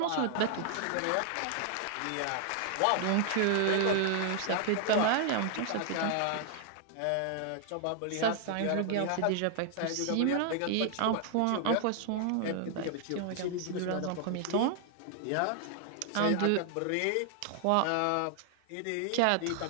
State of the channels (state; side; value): different; both; correlation 0.00